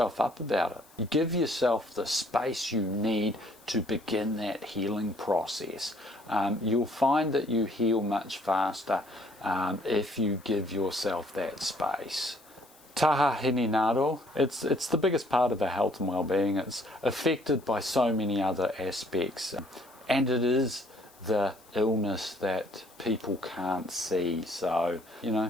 up about it. Give yourself the space you need to begin that healing process. You'll find that you heal much faster if you give yourself that space. Taha Hinengaro, it's the biggest part of our health and well-being. It's affected by so many other aspects, and it is the illness that people can't see. So, you know,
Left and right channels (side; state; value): left; noise; hiss, 27 dB below the sound